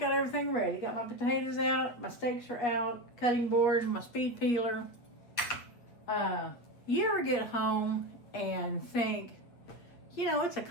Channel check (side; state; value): right; late; 8.3 ms